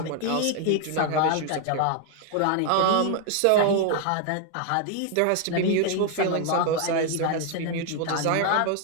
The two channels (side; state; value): both; different; correlation 0.00